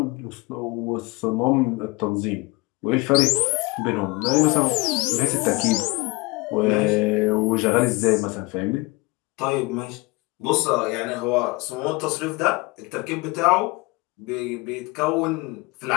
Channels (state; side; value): quieter; right; 24.7 dB